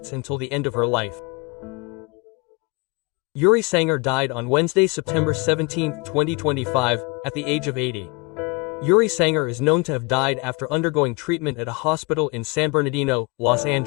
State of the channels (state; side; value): quieter; right; 27.6 dB